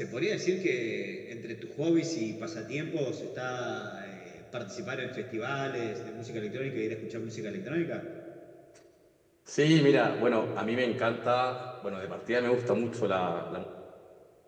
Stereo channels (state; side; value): identical; both; correlation 1.00